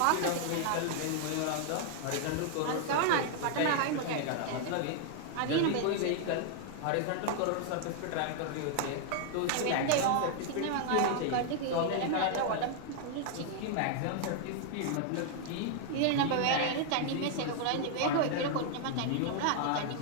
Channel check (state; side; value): different; both; correlation 0.00